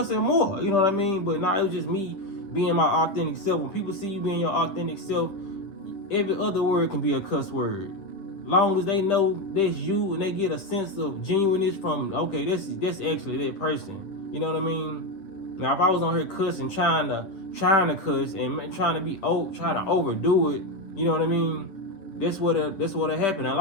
more. You know what I mean? But now it was just me being my authentic self. When people see you being your authentic self, every other word can be a cuss word. Long as they know that's you and they get a sense of genuineness from, okay, that's actually that person. You know what I mean? Now, if I was on here cussing, trying to cuss and trying to overdo it, you know what I mean? That's what happened. A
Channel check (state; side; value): late; right; 10 ms